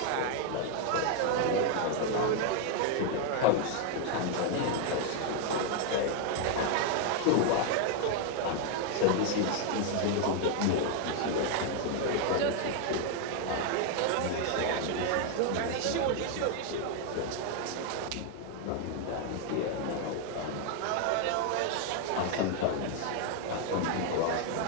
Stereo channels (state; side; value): different; both; correlation 0.01